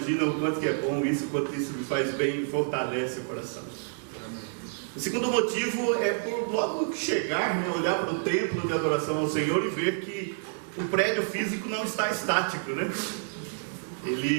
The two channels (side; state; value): left; silent; digital silence